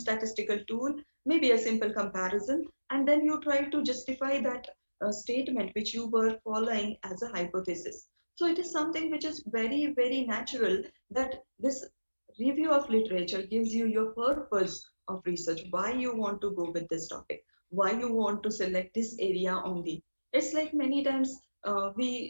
tool, maybe a simple comparison, and then you try to justify that statement which you were following as a hypothesis. So it is something which is very, very natural that this review of literature gives you your purpose of research, why you want to go with this topic, why you want to select this area only. It's like many times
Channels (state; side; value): inverted; both; correlation -1.00